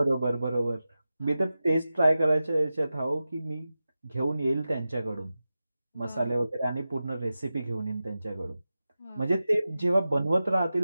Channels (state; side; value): inverted; both; correlation -0.93